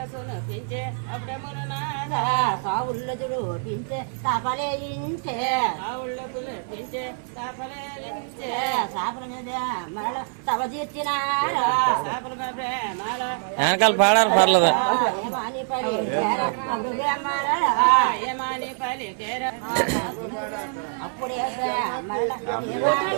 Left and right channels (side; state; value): left; silent; 62 dB below the other